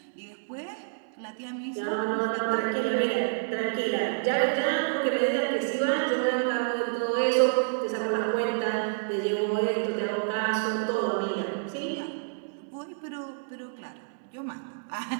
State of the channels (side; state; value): left; silent; digital silence